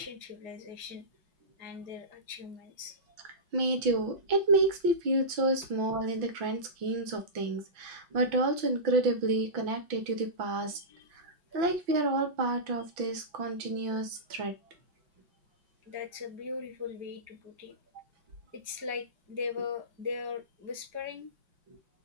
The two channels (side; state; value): left; late; 5.9 ms